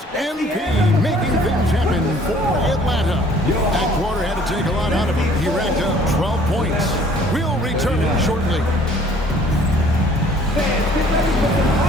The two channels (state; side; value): normal; both; correlation 0.56